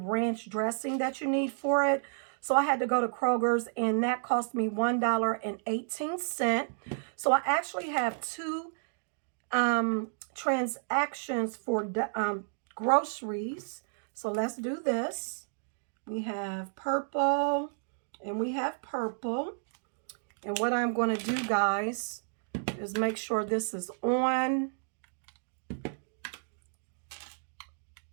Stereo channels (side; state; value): left; silent; digital silence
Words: dressing that you need for it. So I had to go to Kroger's and that cost me $1.18. So I actually have two transactions for groceries. So let's do this. We have purple and we have purple. And what I'm going to do, guys, is make sure this is on.